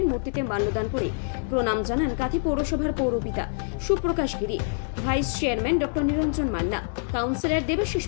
মূর্তিতে মাল্যদান করে প্রণাম জানান কাঁথি পৌরসভার পৌরপিতা সুপ্রকাশ গিরি, ভাইস চেয়ারম্যান ডক্টর নিরঞ্জন মান্না, কাউন্সিলর দেবাশিস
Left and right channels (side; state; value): right; silent; 61 dB below the other